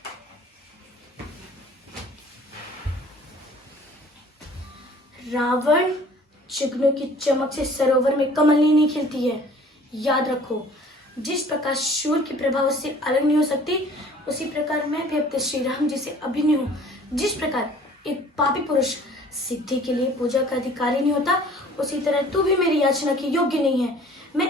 रावण, चिकनों की चमक से सरोवर में कमलनी नहीं खिलती है। याद रखो, जिस प्रकार सूर्य की प्रभा उससे अलग नहीं हो सकती, उसी प्रकार मैं भी अपने श्री राम जी से अभिन्न हूँ। जिस प्रकार एक पापी पुरुष सिद्धि के लिए पूजा का अधिकारी नहीं होता, उसी तरह तू भी मेरी याचना के योग्य नहीं है।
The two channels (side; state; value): both; normal; correlation 0.51